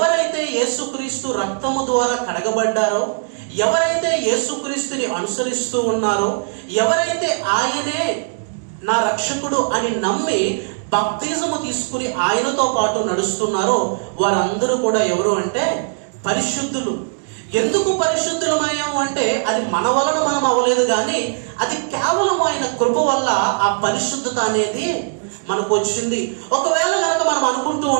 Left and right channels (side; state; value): left; silent; digital silence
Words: యేసుక్రీస్తు రక్తము ద్వారా కడగబడ్డారో, ఎవరైతే యేసుక్రీస్తుని అనుసరిస్తూ ఉన్నారో, ఎవరైతే ఆయనే నా రక్షకుడు అని నమ్మి బాప్తిజము తీసుకుని ఆయనతో పాటు నడుస్తున్నారో వారందరూ కూడా ఎవరు అంటే పరిశుద్ధులు. ఎందుకు పరిశుద్ధులమయ్యాము అంటే అది మన వలన మనం అవ్వలేదు, కానీ అది కేవలం ఆయన కృప వల్ల ఆ పరిశుద్ధత అనేది మనకు వచ్చింది. ఒకవేళ కనుక మనం అనుకుంటూ